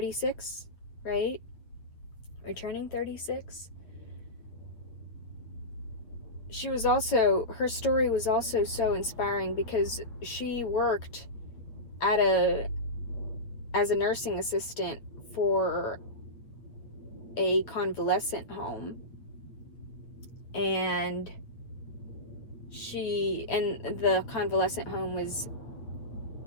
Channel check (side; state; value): right; late; 8.9 ms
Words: right? Returning 36. Her story was also so inspiring because she worked as a nursing assistant for a convalescent home, and the convalescent home was